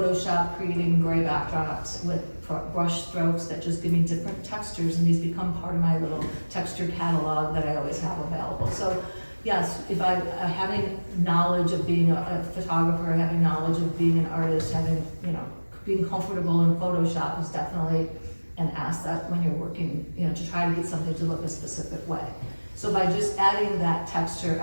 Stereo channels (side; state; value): both; inverted; correlation -1.00